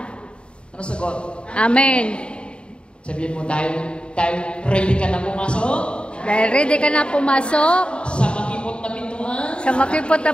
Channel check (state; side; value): late; right; 0.054 ms